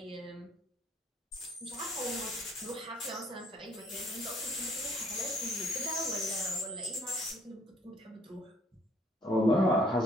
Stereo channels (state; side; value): normal; both; correlation 0.61